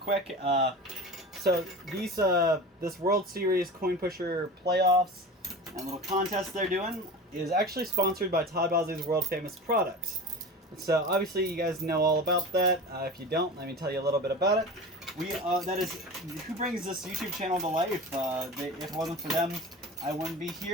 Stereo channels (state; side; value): normal; both; correlation 0.33